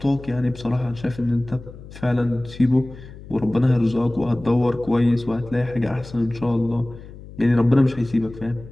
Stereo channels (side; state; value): left; noise; hum, 16 dB below the sound